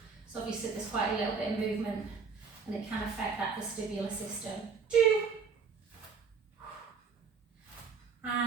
So obviously there's quite a little bit of movement and it can affect that vestibular system. 2.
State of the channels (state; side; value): quieter; left; 5.5 dB